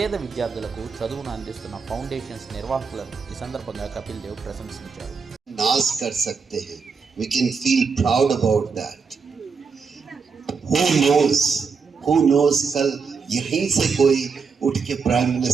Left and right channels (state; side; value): quieter; left; 5.4 dB